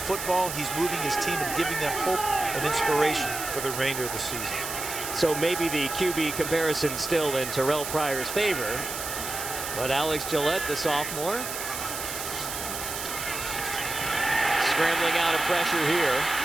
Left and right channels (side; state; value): right; noise; hiss, 6 dB below the sound